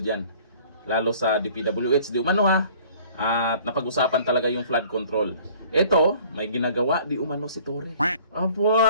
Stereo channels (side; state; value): both; inverted; correlation -0.52